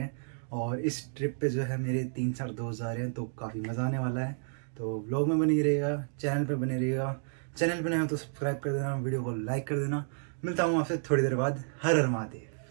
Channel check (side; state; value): left; silent; 57 dB below the other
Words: हैं। और इस ट्रिप पे जो है मेरे 3-4 दोस्त जा रहे हैं, तो काफ़ी मज़ा आने वाला है। तो व्लॉग में बने रहिएगा, चैनल पे बने रहिएगा। चैनल पे नए हो तो सब्सक्राइब कर देना, वीडियो को लाइक कर देना। मिलता हूँ आपसे थोड़ी देर बाद। हर हर